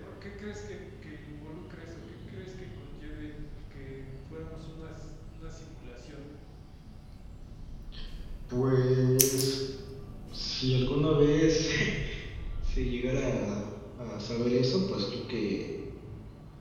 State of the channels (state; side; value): identical; both; correlation 1.00